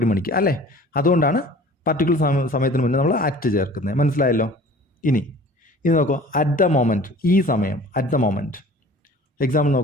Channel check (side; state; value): both; normal; correlation 0.46